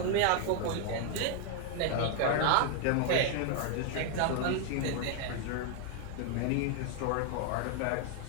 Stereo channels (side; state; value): both; different; correlation 0.00